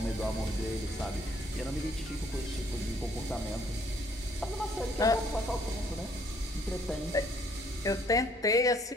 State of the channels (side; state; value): both; normal; correlation 0.64